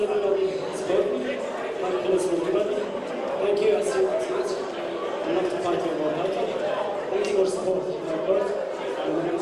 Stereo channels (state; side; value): identical; both; correlation 1.00